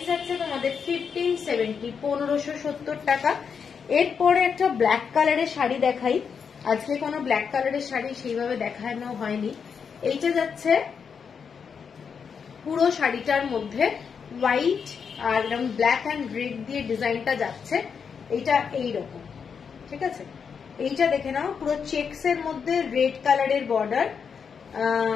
যাচ্ছে তোমাদের 1570, 1570 টাকা। এরপরে একটা ব্ল্যাক কালারের শাড়ি দেখাই। আজকে কোনো ব্ল্যাক কালারের শাড়ি সেইভাবে দেখানো হয়নি। এইটা যাচ্ছে পুরো শাড়িটার মধ্যে হোয়াইট আর ব্ল্যাক অ্যান্ড রেড দিয়ে ডিজাইনটা যাচ্ছে, এইটা এইরকম। ঠিক আছে, এইটা দেখে নাও, পুরো চেকস এর মধ্যে রেড কালারের বর্ডার,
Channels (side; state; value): right; quieter; 6.4 dB